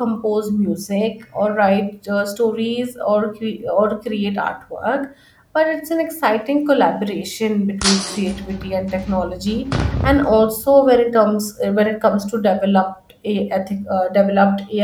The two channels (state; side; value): identical; both; correlation 1.00